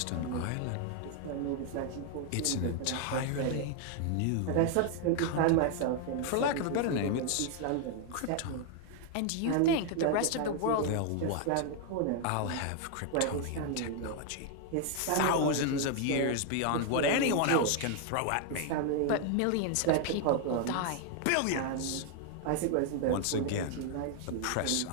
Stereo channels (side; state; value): both; different; correlation 0.00